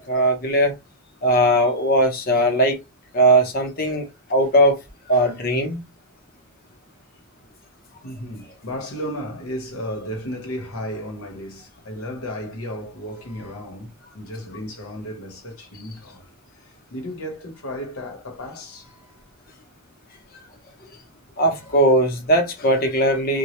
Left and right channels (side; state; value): both; normal; correlation -0.12